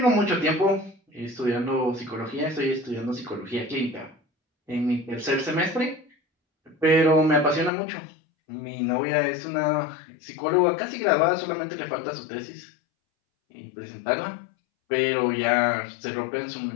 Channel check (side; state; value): right; drops out; at 7.7 s